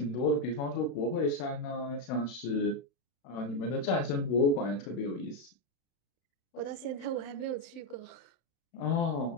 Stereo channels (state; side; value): late; right; 32 ms